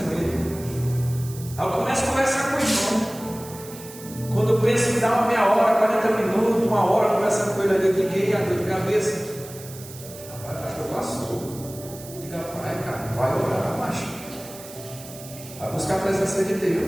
com ele. Aí eu começo a conversar com ele. Quando eu penso em dar uma meia hora, 40 minutos, uma hora conversando com ele ali, eu digo: a dor de cabeça. Rapaz, pastor, passou. Diga: pai, cara, vai orar, macho. Vai buscar a presença de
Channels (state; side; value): noise; right; hiss, 16 dB below the sound